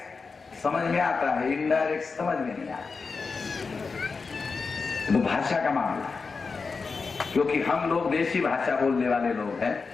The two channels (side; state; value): right; quieter; 4.7 dB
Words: समझ में आता है, इनडायरेक्ट समझ में नहीं आता। तो भाषा का मामला है, क्योंकि हम लोग देसी भाषा बोलने वाले लोग हैं।